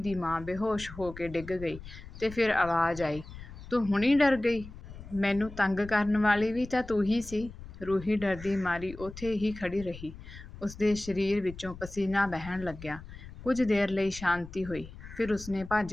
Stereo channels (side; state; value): left; noise; rumble, 14 dB below the sound